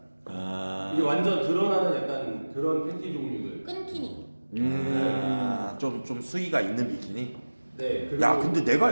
이게 완전 드러나는 약간 그런 팬티 종류들. 끈키니. 좀 수위가 있는 비키니? 네. 야 근데 내가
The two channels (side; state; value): both; inverted; correlation -1.00